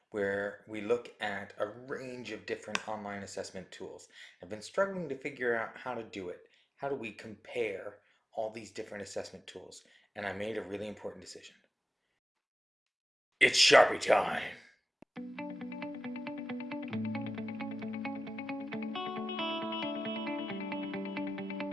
where we look at a range of different online assessment tools. I've been struggling to figure out how to do it. How do we compare all these different assessment tools? And I made a really important decision. It's Sharpie time!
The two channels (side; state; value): both; normal; correlation 0.94